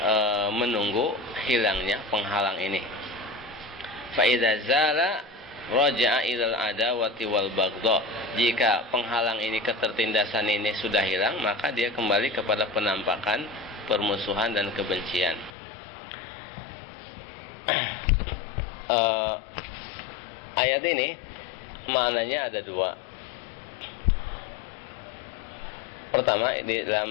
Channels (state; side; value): drops out; right; at 15.5 s